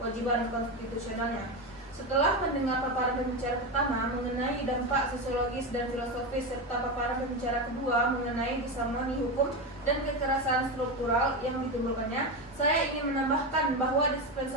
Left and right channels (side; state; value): both; normal; correlation 0.16